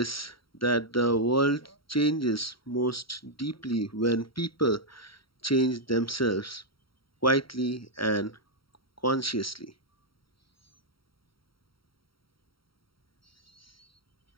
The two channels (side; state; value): right; late; 0.74 ms